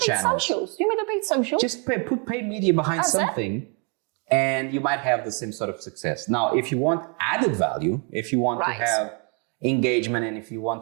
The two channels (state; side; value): quieter; left; 36.0 dB